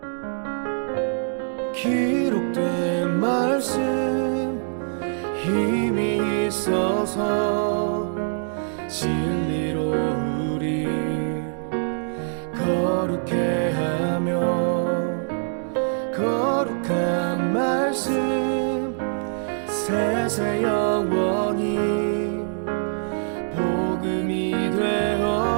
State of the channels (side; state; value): left; silent; digital silence